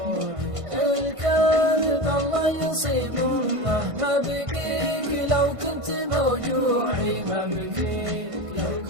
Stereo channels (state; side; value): late; left; 1.5 ms